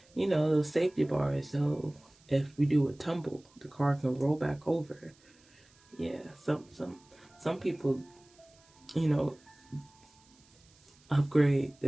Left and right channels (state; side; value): noise; right; hiss, 30 dB below the sound